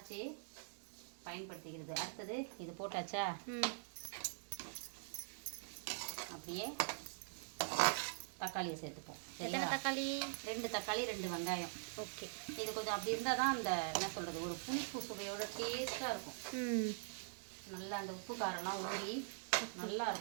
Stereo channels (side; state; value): left; silent; digital silence